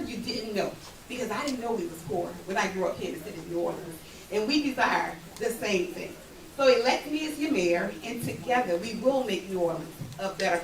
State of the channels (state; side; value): identical; both; correlation 1.00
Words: you didn't know. Because I didn't know we was poor when I grew up here in the city of New Orleans. And we desire the same thing. So elect me as your mayor, and together we will make New Orleans a better